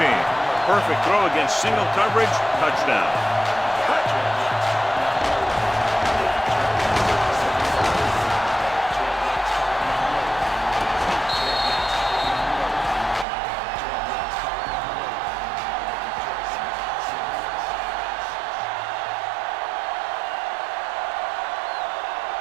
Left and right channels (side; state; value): left; drops out; at 13.2 s